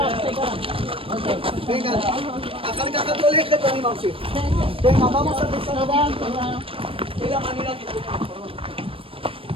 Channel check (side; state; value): left; late; 0.26 ms